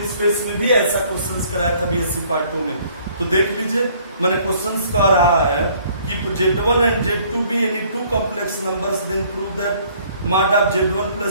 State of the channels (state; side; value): inverted; both; correlation -0.59